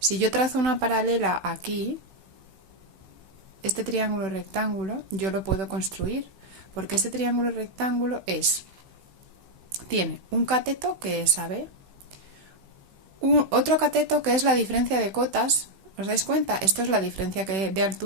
yo trazo una paralela aquí, este triángulo rectángulo yo lo puedo construir, porque este triángulo rectángulo tiene un cateto que es AB, otro cateto que es la diferencia de cotas. ¿Os dais cuenta? Esto es la diferencia de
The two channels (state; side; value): late; left; 16 ms